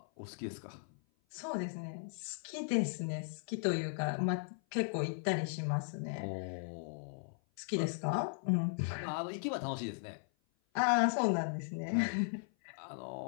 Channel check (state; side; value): silent; right; 53 dB below the other